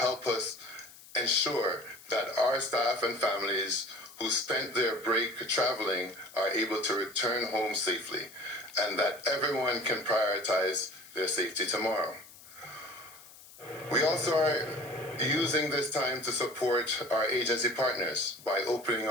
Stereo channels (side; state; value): left; noise; hiss, 20 dB below the sound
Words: us ensure that our staff and families who spent their break traveling are able to return home safely, and that everyone can prioritize their safety tomorrow. We also are using this time to support our agency partners by opening